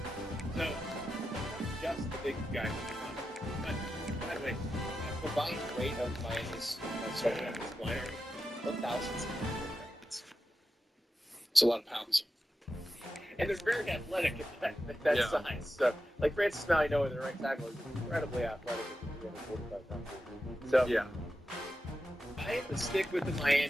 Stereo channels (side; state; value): both; normal; correlation 0.90